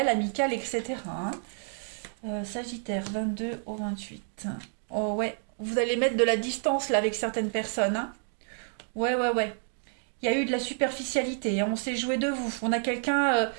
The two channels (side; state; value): left; silent; 58 dB below the other